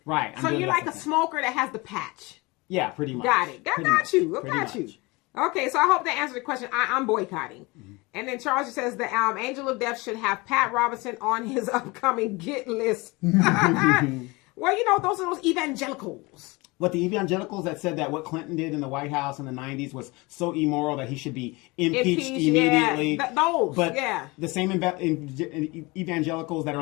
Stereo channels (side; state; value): right; quieter; 24.6 dB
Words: Right. So you're like a smoker that has the patch. Yeah, pretty much. Got it. I got you. Okay, so I hope that answered the question. I'm boycotting. And then Charles says the Angel of Death should have Pat Robertson on his upcoming get list. Well, you know, those are those evangelicals. What, the evangelicals that said that what Clinton did in the White House in the 90s was so immoral that he should be impeached immediately. Yeah. The same evangelicals that are